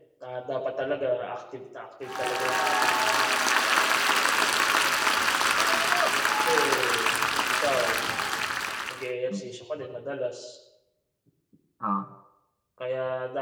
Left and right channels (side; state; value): both; identical; correlation 1.00